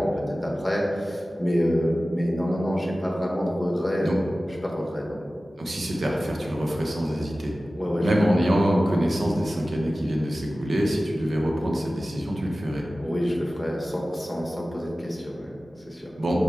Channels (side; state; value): both; normal; correlation 0.96